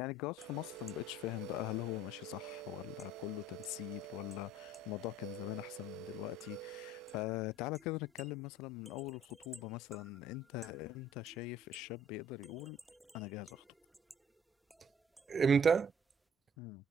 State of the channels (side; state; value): both; normal; correlation 0.54